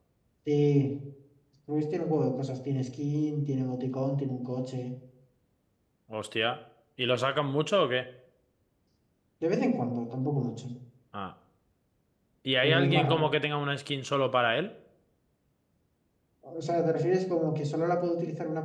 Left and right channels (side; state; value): both; identical; correlation 1.00